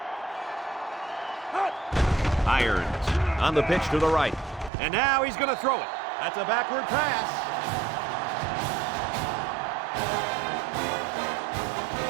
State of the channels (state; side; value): drops out; left; at 4.7 s